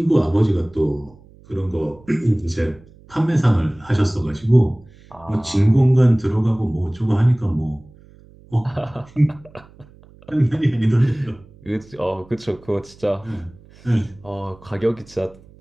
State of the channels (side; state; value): right; noise; hum, 25 dB below the sound